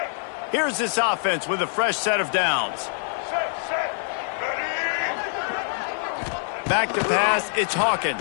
Here's this offense with a fresh set of downs. Back to pass, it's Hawkins.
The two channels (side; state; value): right; silent; 62 dB below the other